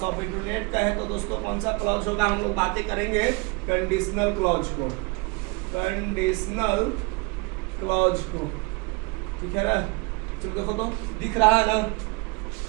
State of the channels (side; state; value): left; quieter; 27.5 dB